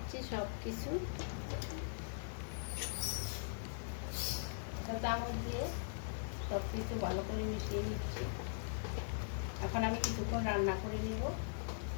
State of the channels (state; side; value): silent; right; 50 dB below the other